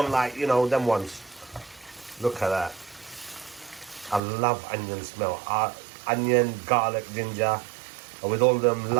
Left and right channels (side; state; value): left; drops out; at 4.2 s